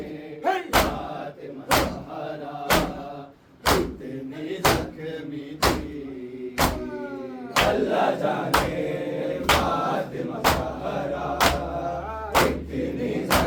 फातिमा ज़हरा कितनी ज़ख्मी थी। अल्लाह जाने फातिमा ज़हरा कितनी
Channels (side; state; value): both; identical; correlation 1.00